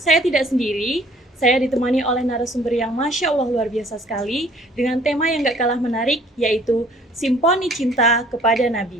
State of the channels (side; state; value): both; normal; correlation 0.56